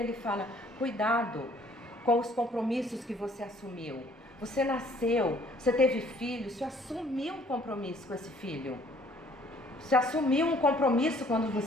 fala, cuidado com os compromissos que você assumiu. Você nasceu, você teve filho, você assumiu um compromisso com esse filho. Você assumiu um compromisso quando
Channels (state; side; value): normal; both; correlation 0.59